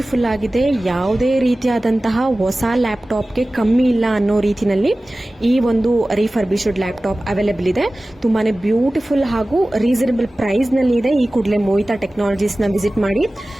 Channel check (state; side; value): normal; both; correlation 0.97